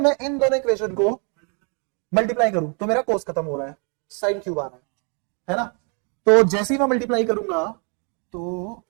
मैं इन दोनों इक्वेशन को मल्टीप्लाई करूं तो मेरा कोस खत्म हो रहा है, साइन क्यूब आ रहा है ना, तो जैसे ही मैं मल्टीप्लाई करूंगा तो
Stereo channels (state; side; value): quieter; left; 38.0 dB